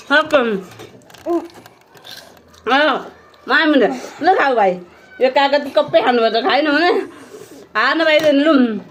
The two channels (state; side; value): identical; both; correlation 1.00